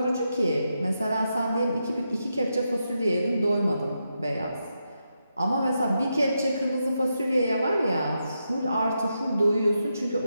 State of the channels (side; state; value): both; inverted; correlation -0.85